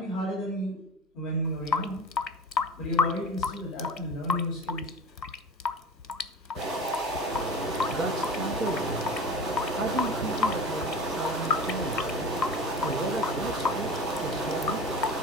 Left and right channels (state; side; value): normal; both; correlation 0.36